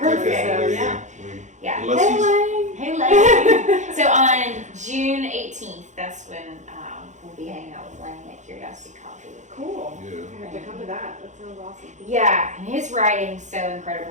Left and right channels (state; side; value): late; left; 0.35 ms